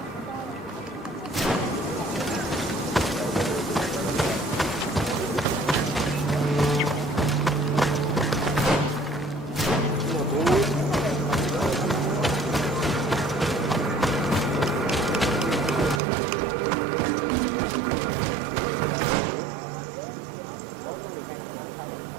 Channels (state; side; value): drops out; left; at 16.0 s